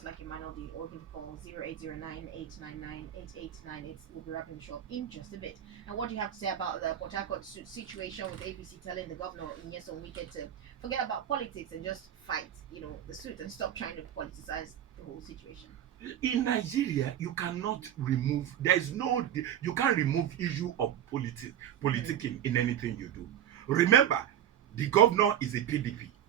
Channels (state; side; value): quieter; left; 10.5 dB